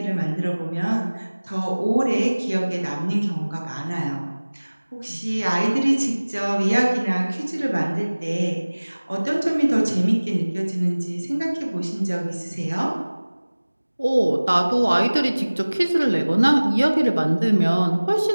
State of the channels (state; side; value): inverted; both; correlation -1.00